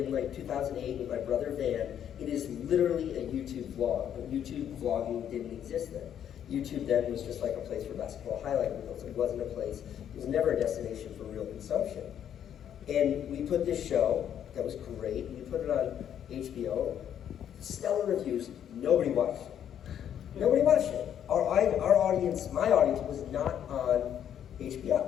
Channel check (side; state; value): right; quieter; 9.6 dB